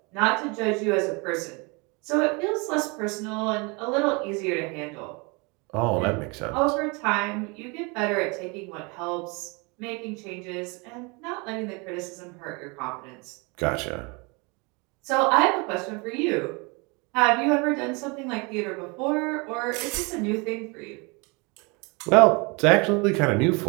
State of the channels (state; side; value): quieter; left; 29.2 dB